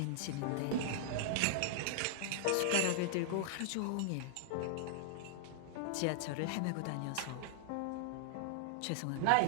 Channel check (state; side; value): different; both; correlation -0.01